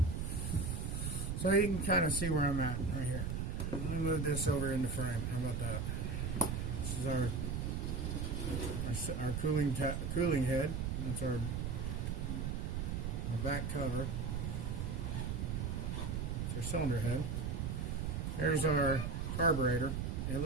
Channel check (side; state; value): right; noise; rumble, 1 dB below the sound